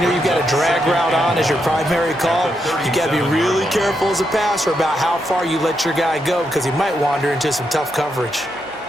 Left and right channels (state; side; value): noise; right; hum, 27 dB below the sound